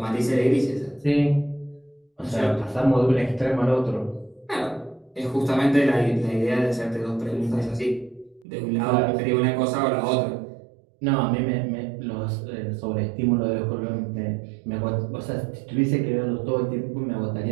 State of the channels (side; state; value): left; drops out; at 8.5 s